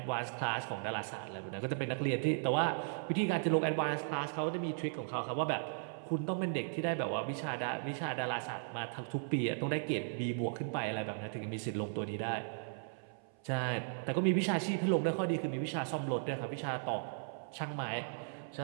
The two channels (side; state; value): left; silent; 53 dB below the other